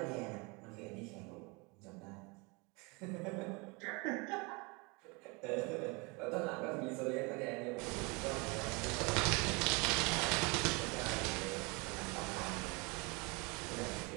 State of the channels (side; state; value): left; quieter; 28.6 dB